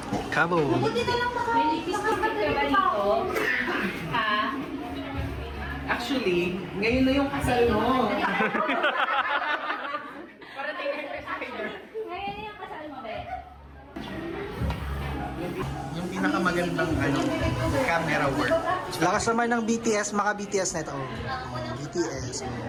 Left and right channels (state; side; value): identical; both; correlation 1.00